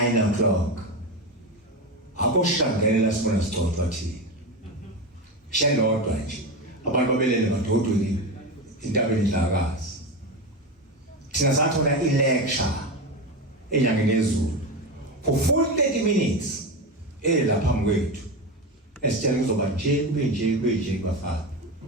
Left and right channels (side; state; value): both; normal; correlation 0.19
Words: o'clock. Akoshangela sibona sigcotshwa thina. Shelodwa nje. Abantu babelele madodweni Indabenkulu. Thina sathola i-lecture enyangeni yezulu for 40 minutes lapha phambi kwethu. Esitshela kuzoba nje kube nje bafana.